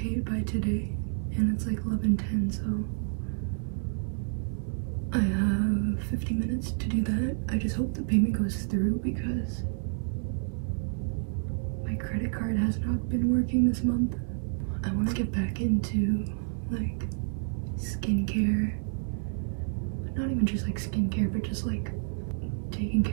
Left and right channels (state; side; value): silent; left; 58 dB below the other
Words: by today, and it's like 11:10, so I have 50 minutes to do that. I just hope the payment goes through because my credit card has not been working this month. I want to get back into like skincare. Not even just like skincare, but just like taking